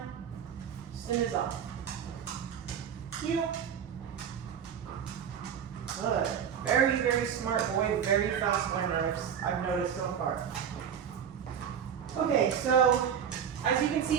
stim is off. Heel. Good. Very, very smart boy, very fast learner, I've noticed so far. Okay, so as you can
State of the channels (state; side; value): quieter; left; 8.2 dB